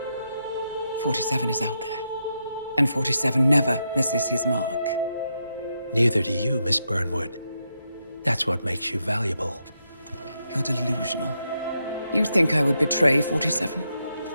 47 is out there. And 47 never misses his mark. Neither do you, Miss Burnwood. That's what makes you valuable. You're delusional. You think I would betray 47?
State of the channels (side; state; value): both; inverted; correlation -0.83